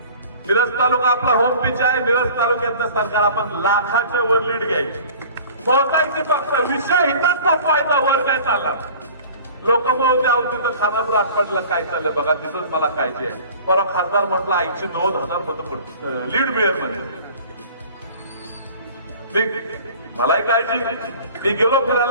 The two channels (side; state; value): both; inverted; correlation -0.45